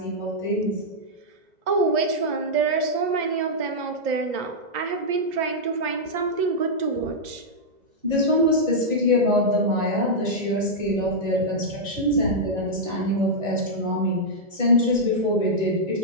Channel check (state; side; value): late; left; 2.0 ms